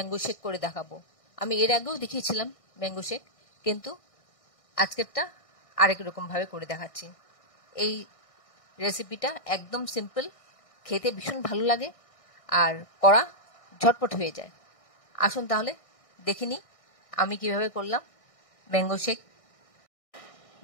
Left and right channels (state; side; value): late; right; 1.6 ms